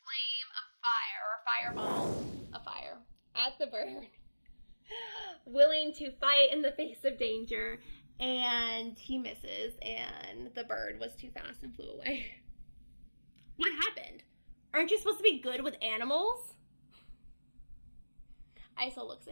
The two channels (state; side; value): inverted; both; correlation -1.00